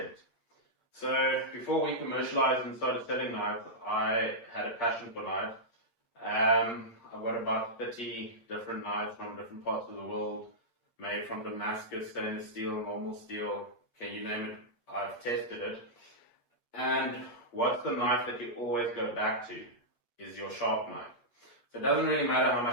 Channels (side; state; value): right; late; 8.5 ms